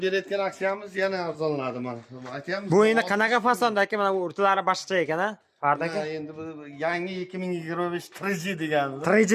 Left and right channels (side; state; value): both; identical; correlation 1.00